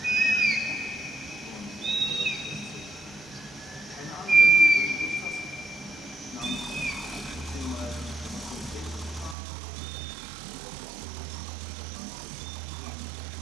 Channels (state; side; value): drops out; left; at 9.3 s